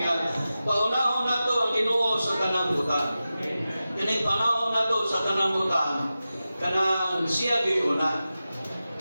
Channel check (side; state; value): both; inverted; correlation -0.94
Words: nga, paunahon na to ang Ginoo sa tanang butan. Kining panahon na to sa tanang butan, kanang siya gayuna.